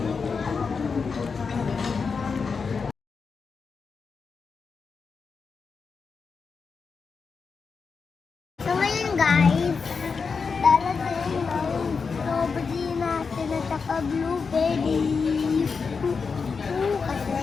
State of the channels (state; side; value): quieter; right; 5.2 dB